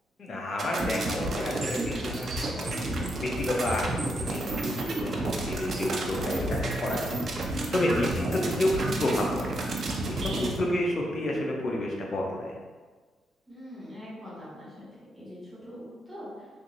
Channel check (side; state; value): both; normal; correlation 0.80